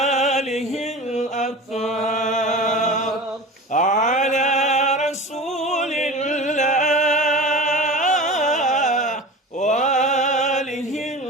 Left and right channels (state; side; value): normal; both; correlation 0.33